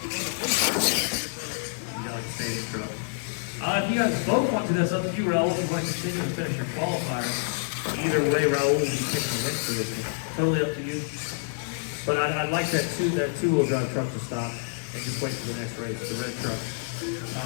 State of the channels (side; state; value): right; silent; digital silence